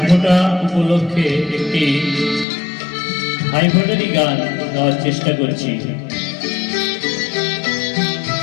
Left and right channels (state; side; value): drops out; right; at 2.5 s